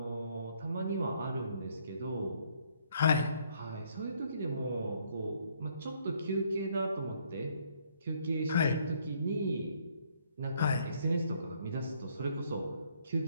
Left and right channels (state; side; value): inverted; both; correlation -0.67